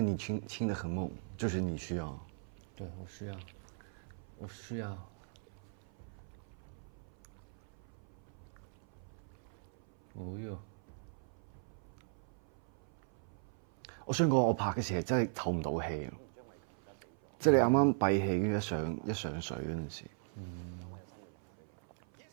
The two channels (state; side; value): silent; left; 52 dB below the other